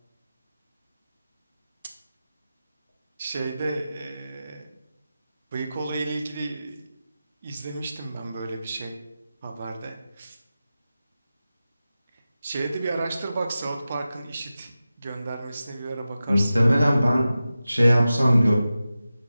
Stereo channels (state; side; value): inverted; both; correlation -0.94